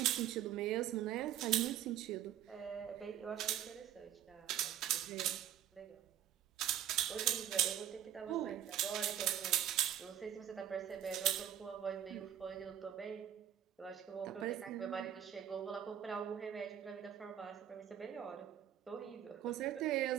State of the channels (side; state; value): left; quieter; 10.7 dB